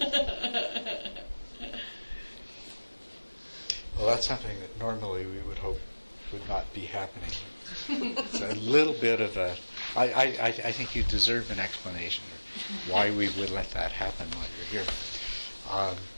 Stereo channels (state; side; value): inverted; both; correlation -1.00